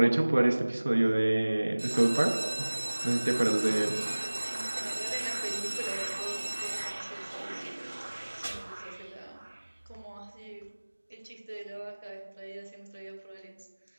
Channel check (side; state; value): both; inverted; correlation -1.00